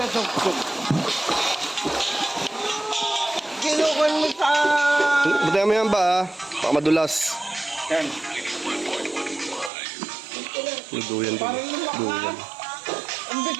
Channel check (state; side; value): drops out; left; at 9.7 s